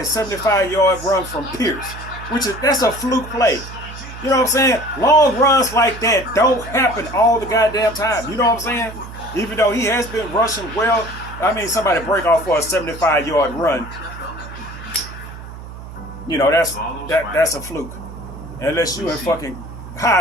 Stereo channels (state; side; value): noise; right; hum, 13 dB below the sound